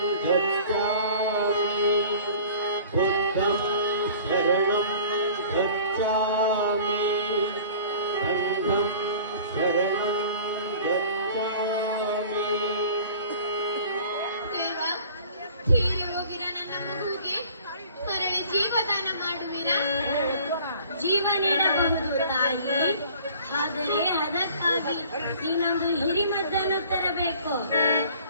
ಗಚ್ಚಾಮಿ, ಬುದ್ಧಂ ಶರಣಂ ಗಚ್ಚಾಮಿ, ಸಂಘಂ ಶರಣಂ ಗಚ್ಚಾಮಿ. ದೇವ, ತೀರಿ ಹೋಗಿರ ನನ್ನ ಮಗುವಿಗೆ ಮರಳಿ ಜೀವದಾನ ಮಾಡುವಿರಾ? ಜೀವ ನೀಡಬಹುದು ತಾಯಿ, ಆದರೆ ಅದಕ್ಕಾಗಿ ನೀನೊಂದು ಹಿರಿಮದ್ದನ್ನು ತರಬೇಕು.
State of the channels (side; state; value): both; inverted; correlation -0.48